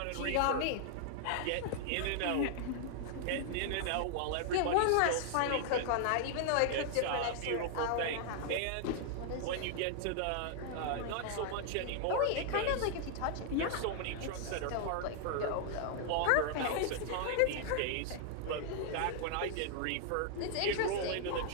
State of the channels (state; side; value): different; both; correlation 0.00